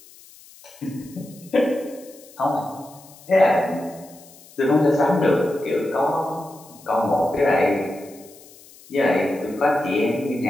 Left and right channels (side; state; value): left; noise; hiss, 23 dB below the sound